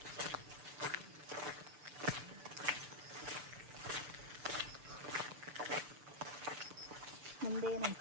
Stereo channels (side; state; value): left; late; 6.9 ms